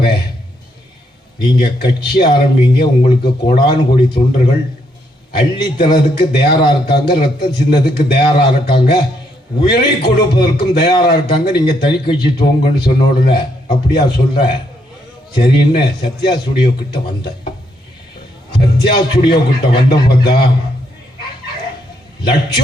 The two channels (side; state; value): both; normal; correlation 0.75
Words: நீங்கள் கட்சி ஆரம்பிங்க, உங்களுக்கு கோடானு கோடி தொண்டர்கள் அள்ளி தரதுக்கு தயாராக இருக்காங்க, ரத்தம் சின்னதுக்கு தயாராக இருக்காங்க, உயிரை கொடுப்பதற்கும் தயாராக இருக்காங்க. நீங்கள் தனி கட்சி துவங்கன்னு சொன்ன உடனே அப்படியா சொல்ற சரின்னு சத்யா ஸ்டுடியோ கிட்ட வந்தேன். சத்யா ஸ்டுடியோ கிட்ட வந்த பார்த்தா